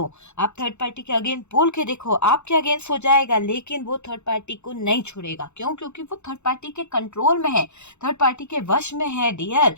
आप थर्ड पार्टी के अगेंस्ट बोल के देखो, आपके अगेंस्ट हो जाएगा, लेकिन वो थर्ड पार्टी को नहीं छोड़ेगा। क्यों? क्योंकि वो थर्ड पार्टी के कंट्रोल में है, थर्ड पार्टी के वश में है डियर।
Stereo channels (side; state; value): right; late; 0.82 ms